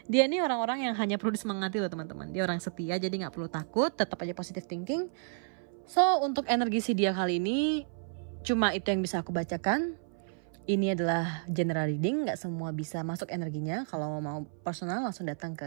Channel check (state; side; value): silent; left; 57 dB below the other